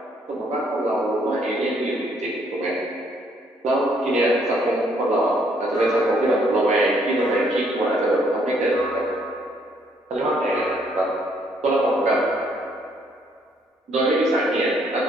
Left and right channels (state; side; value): normal; both; correlation 0.68